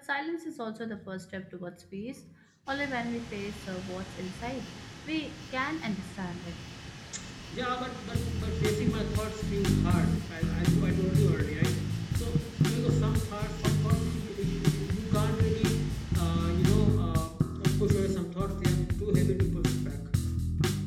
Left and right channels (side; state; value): both; identical; correlation 1.00